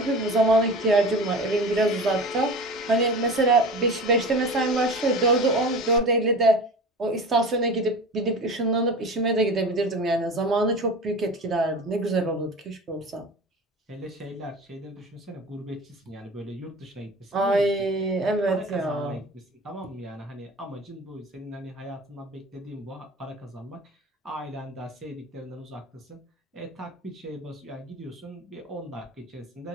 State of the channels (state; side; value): normal; both; correlation 0.35